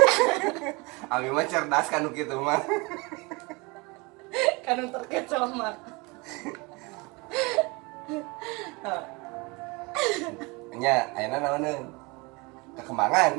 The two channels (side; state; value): left; quieter; 26.5 dB